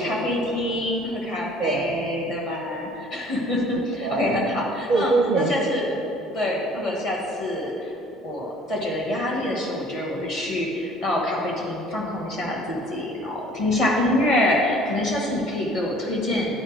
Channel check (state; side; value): normal; both; correlation 0.53